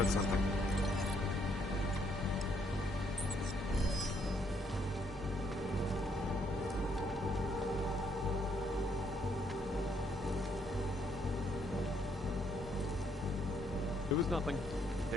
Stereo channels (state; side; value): normal; both; correlation 0.71